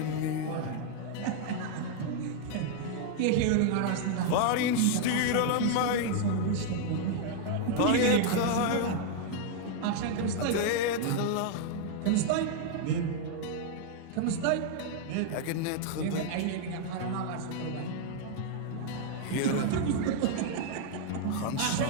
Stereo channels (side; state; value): both; different; correlation 0.00